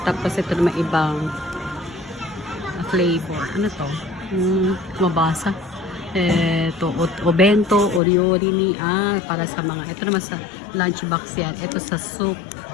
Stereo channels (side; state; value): right; drops out; at 8.0 s